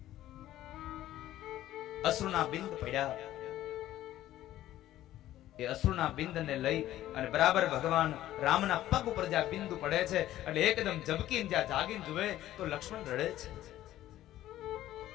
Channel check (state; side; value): quieter; right; 13.8 dB